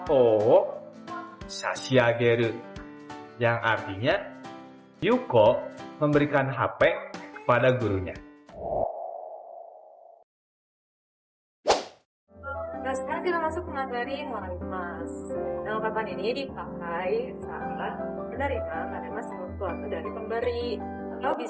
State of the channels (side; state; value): both; identical; correlation 1.00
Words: ホを差し上げる. Yang artinya, Yuko memberikan HP kepada gurunya. Nah, sekarang kita masuk ke materi moralitas. Nah, ungkapan ini dipakai saat menerima sesuatu dari pemberi, atau